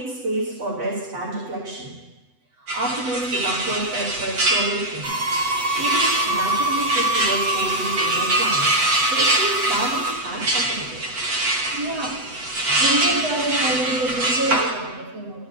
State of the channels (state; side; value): late; left; 8.0 ms